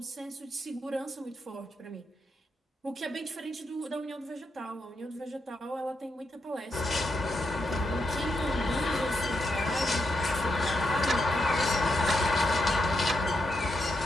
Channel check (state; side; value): normal; both; correlation 0.83